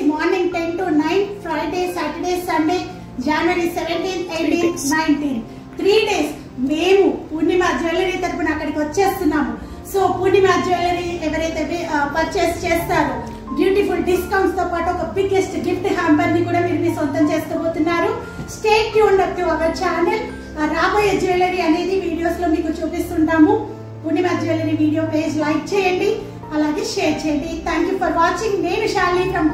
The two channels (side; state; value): both; identical; correlation 1.00